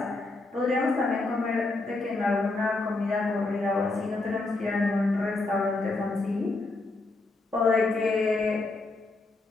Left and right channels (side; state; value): right; quieter; 3.3 dB